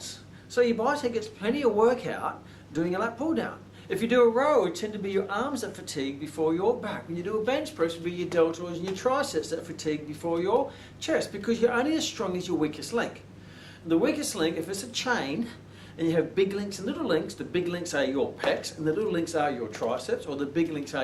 So your bicep gets plenty of workout doing a lat pull down. If you do a row, it tend to be your arms that fatigue before your back. When you do a bench press, it will be your deltoids and your triceps that fatigue before your chest, because you're only as strong as your weakest link. And the weakest link, if it's a chain, and you have big links and little links, the big links are your pecs and the little links are your triceps, or the big links are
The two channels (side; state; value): both; identical; correlation 1.00